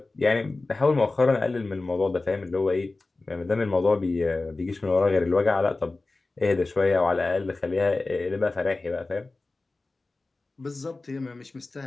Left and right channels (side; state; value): right; quieter; 3.4 dB